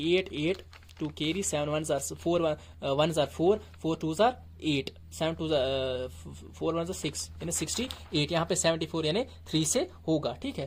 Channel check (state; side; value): identical; both; correlation 1.00